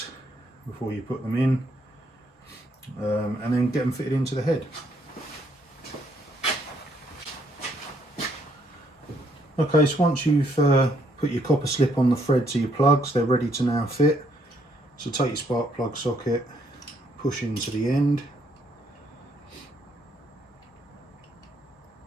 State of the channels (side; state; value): both; normal; correlation 0.70